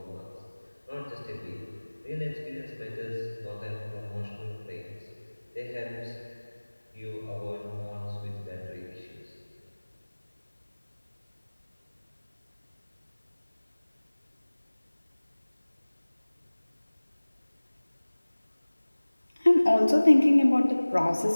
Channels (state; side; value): inverted; both; correlation -1.00